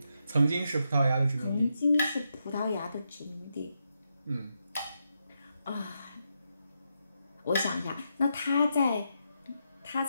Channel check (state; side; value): inverted; both; correlation -0.83